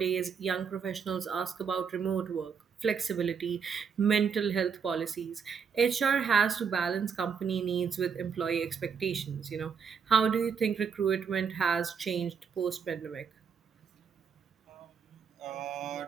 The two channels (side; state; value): left; quieter; 6.4 dB